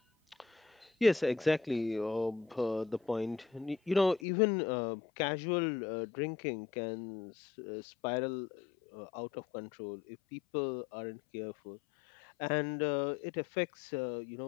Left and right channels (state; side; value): drops out; right; at 4.2 s